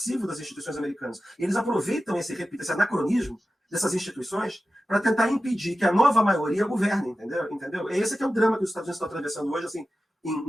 das instituições americanas. E eles aproveitam esse anacronismo dessas instituições para tentar impedir que a nova maioria governe, entendeu? Esse que é o drama que os Estados Unidos estão atravessando hoje, assim, em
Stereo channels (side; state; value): both; normal; correlation 0.93